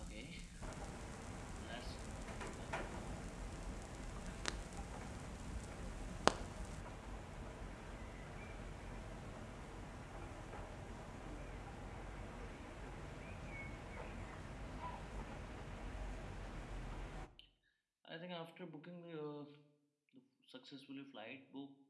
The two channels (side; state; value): both; identical; correlation 1.00